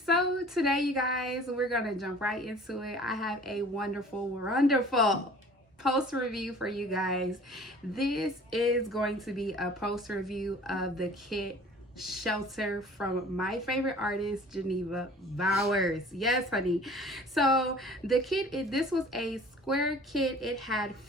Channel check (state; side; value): normal; both; correlation 0.47